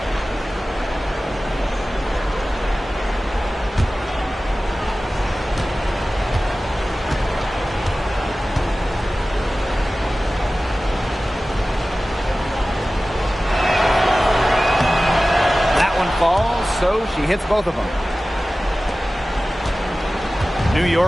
Falls, so she hits both of them. New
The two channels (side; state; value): both; normal; correlation 0.96